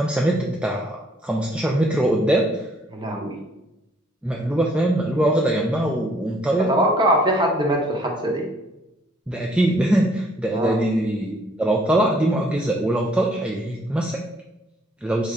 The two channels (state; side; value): normal; both; correlation 0.63